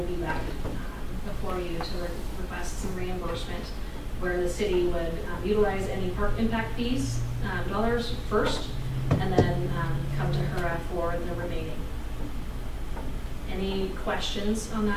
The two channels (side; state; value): both; identical; correlation 1.00